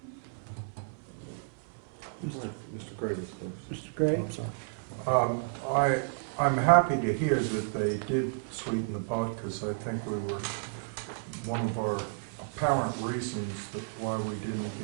Mr. Gray was first. Mr. Gray? Oh, I'm sorry. I'm happy to hear that they did sweeten the pot, because I think one of our apparent reasons that why we didn't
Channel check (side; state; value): left; silent; 57 dB below the other